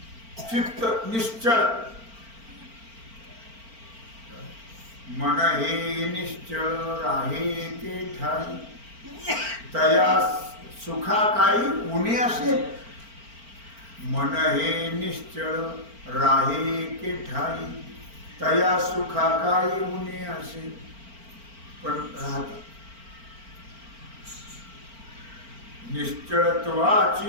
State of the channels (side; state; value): left; late; 4.4 ms